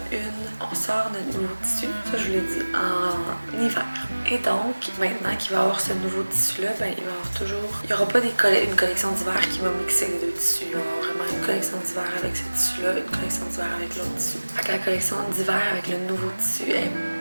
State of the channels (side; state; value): both; inverted; correlation -1.00